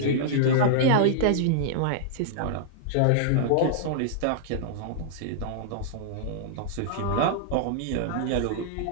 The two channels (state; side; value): different; both; correlation -0.02